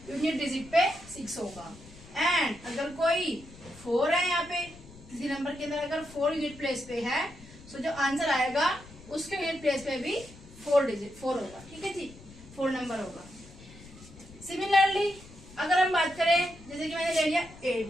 यूनिट डिजिट पे 6 होगा। एंड अगर कोई 4 है, यहाँ पे किसी नंबर के अंदर अगर 4 यूनिट प्लेस पे है, तो जो आंसर आएगा उसके यूनिट प्लेस पे भी 4 होगा। ठीक है जी, 4 नंबर होगा। सिमिलरली अगर हम बात करें, जैसे कि मैंने ले लिया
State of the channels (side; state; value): left; noise; rumble, 20 dB below the sound